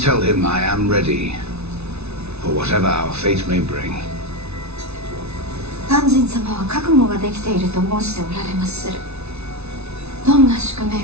tell him I am ready for whatever our fate may bring. 鑑真様は覚悟ができていると申しておられまする。どんな宿命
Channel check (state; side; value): late; left; 0.81 ms